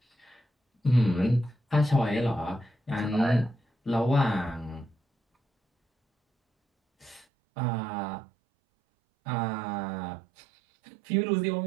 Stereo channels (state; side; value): drops out; left; at 7.2 s